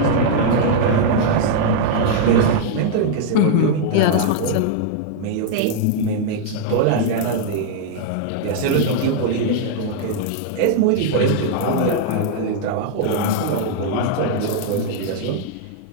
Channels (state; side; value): different; both; correlation 0.00